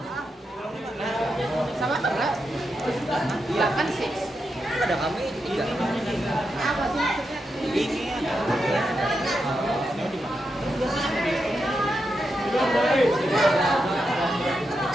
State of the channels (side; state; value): both; normal; correlation 0.86